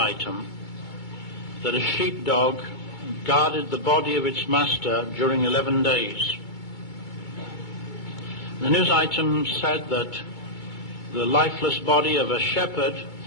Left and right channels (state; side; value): late; right; 2.2 ms